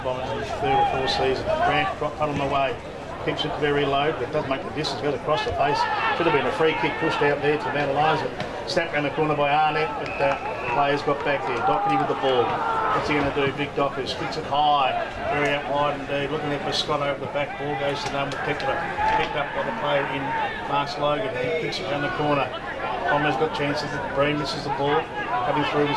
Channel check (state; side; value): identical; both; correlation 1.00